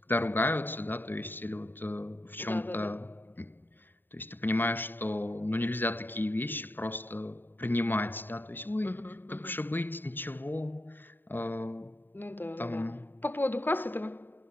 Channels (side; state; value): right; late; 0.093 ms